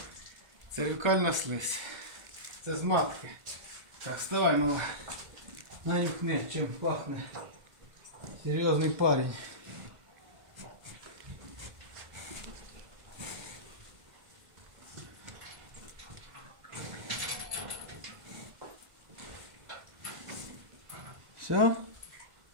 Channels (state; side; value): late; left; 1.5 ms